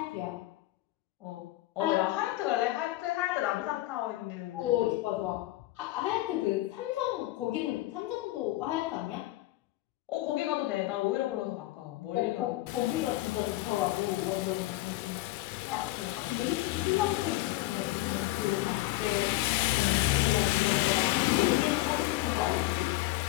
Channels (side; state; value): right; quieter; 17.6 dB